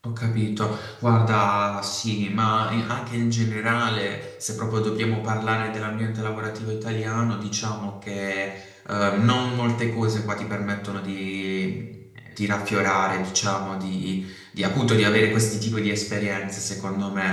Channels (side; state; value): both; identical; correlation 1.00